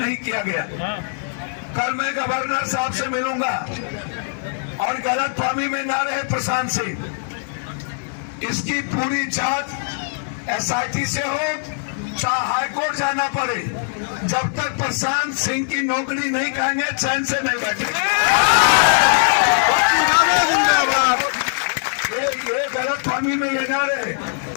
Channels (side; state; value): right; silent; 65 dB below the other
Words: किया गया। कल मैं गवर्नर साहब से मिलूंगा और गलतफहमी में ना रहे प्रशांत सिंह, इसकी पूरी जांच SIT से हो, चाहे हाईकोर्ट जाना पड़े। जब तक प्रशांत सिंह की नौकरी नहीं कहेंगे चैन से नहीं बैठेंगे। ये गलतफहमी में ये ना रहे